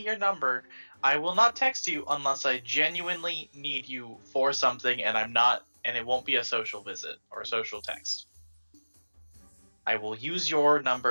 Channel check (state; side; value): inverted; both; correlation -1.00